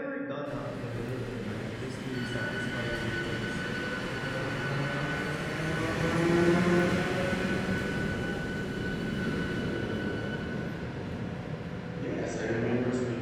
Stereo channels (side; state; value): both; identical; correlation 1.00